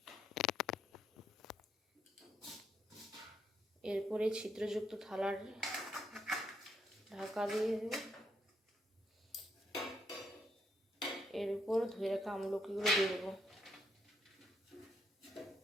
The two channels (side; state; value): both; normal; correlation 0.76